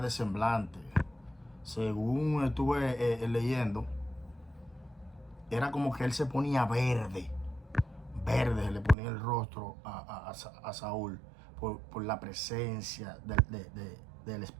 de semblante. Según estuve leyendo, era como que él se ponía verde. Verde se le ponía el rostro a Saúl por la presencia del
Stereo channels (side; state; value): left; drops out; at 9.0 s